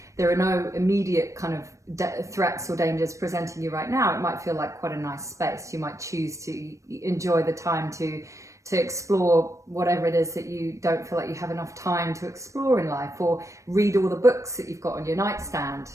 there are no immediate kind of threats or dangers presenting you right now. It might feel like quite a nice space. You might choose to enjoy the time to explore whatever it is that you don't feel like you have enough time to explore in life, or read all the books that you've got on your nightstand,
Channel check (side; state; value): left; late; 0.15 ms